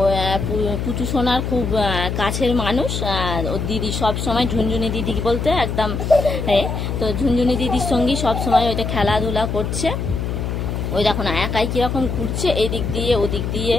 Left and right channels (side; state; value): left; noise; hum, 3 dB below the sound